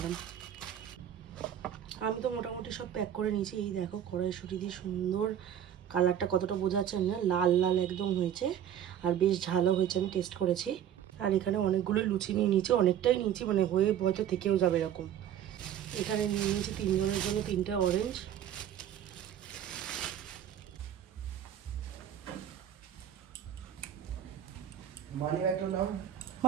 আমি তো মোটামুটি সব প্যাক করে নিয়েছি। এই দেখো কড়াইশুঁটি দিয়ে সুন্দর কালারটা কতটা বোঝা যাচ্ছে না, লাল লাল একদম হয়েছে, আর বেশ ঝালও হয়েছে, আমি টেস্ট করেছি। আর এখানে অনেকগুলো লুচি নিয়ে নিয়েছি, অনেকটাই নিয়েছি, মানে হয়ে হয়তো থেকেও যাবে এরকম। এখানে নিয়ে নিয়েছি 3 জনের জন্য 3টে অরেঞ্জ।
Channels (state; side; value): quieter; left; 10.0 dB